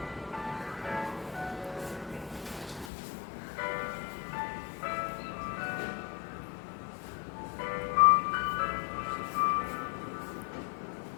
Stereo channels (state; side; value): drops out; right; at 2.9 s